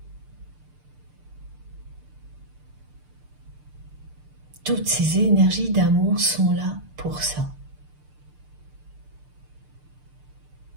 Toutes ces énergies d'amour sont là pour ça.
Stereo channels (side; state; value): left; late; 6.7 ms